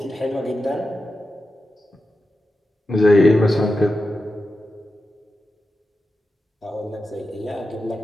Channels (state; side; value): normal; both; correlation 0.91